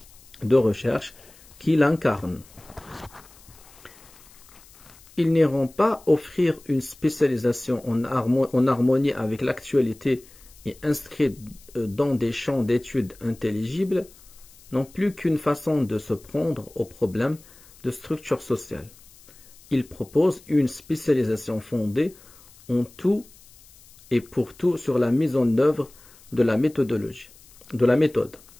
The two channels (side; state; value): left; noise; hiss, 24 dB below the sound